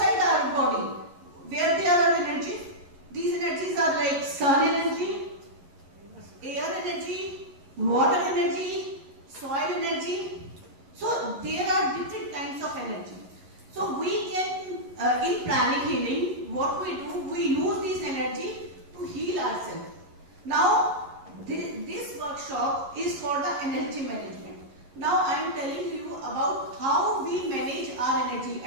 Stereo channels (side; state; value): left; late; 11 ms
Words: our body. Where there are energy? These energies are like sun energy, air energy, water energy, soil energy. So there are different kinds of energy. So we can, in pranic healing, what we do, we use this energy to heal ourselves. Now, this workshop is for the energy management. Now I am telling you about how we manage our energy